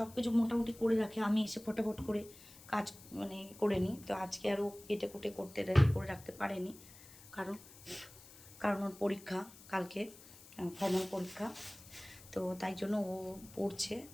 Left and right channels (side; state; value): left; noise; hiss, 20 dB below the sound